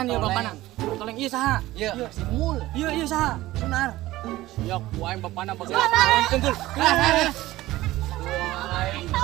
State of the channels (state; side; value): quieter; left; 16.9 dB